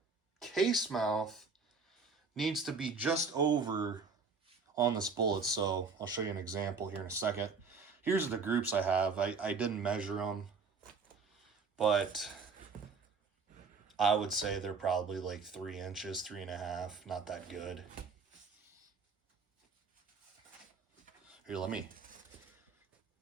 case mouth needs to be just over on this bullet. So I'll show you an example here in a second. Here's the groups I have. I didn't measure them, but I would say they're probably like 3 inches, 3.5, not that good. Here, let me.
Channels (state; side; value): quieter; left; 4.8 dB